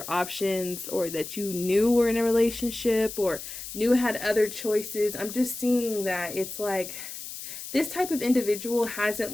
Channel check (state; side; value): noise; left; hiss, 10 dB below the sound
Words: options, or that you knew were in a relationship or knew had other choices. I'm just seeing that it's like this type of individual